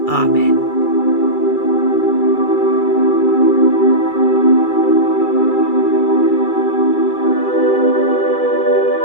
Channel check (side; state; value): right; late; 2.3 ms